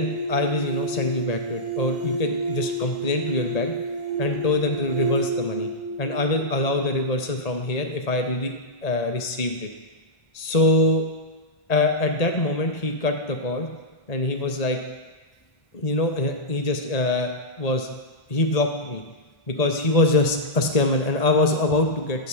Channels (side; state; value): right; late; 1.8 ms